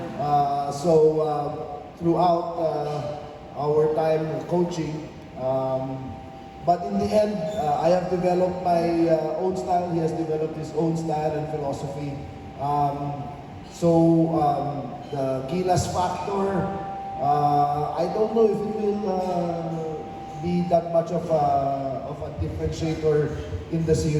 Throughout our time coaching, but in the end, I have developed my own style. He has developed his own style and philosophy. The Gilas factor, I don't know if it will be that much of a differentiator in the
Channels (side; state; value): both; identical; correlation 1.00